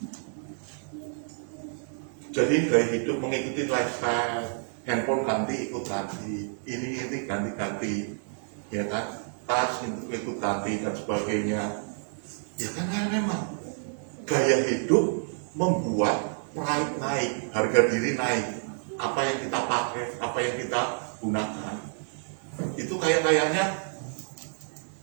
jadi gaya hidup mengikuti lifestyle, handphone ganti ikut ganti, ini ganti-ganti, ya kan, tas ikut ganti dan sebagainya. Ya kan, memang gaya hidup membuat pride naik, harga diri naik. Apa yang kita pakai, apa yang kita gunakan, itu kayaknya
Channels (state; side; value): silent; left; 59 dB below the other